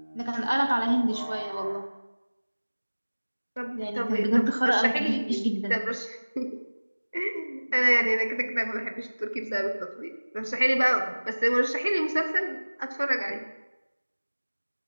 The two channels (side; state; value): both; inverted; correlation -1.00